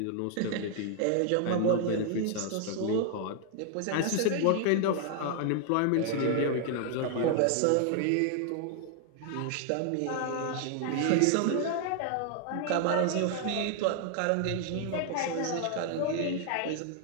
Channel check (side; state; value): both; different; correlation 0.00